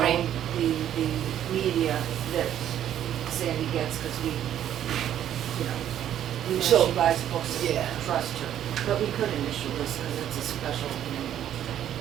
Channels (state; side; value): quieter; left; 10.8 dB